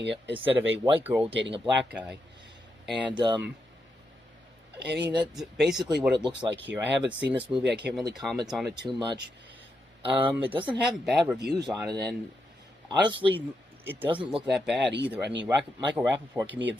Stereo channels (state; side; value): normal; both; correlation 0.83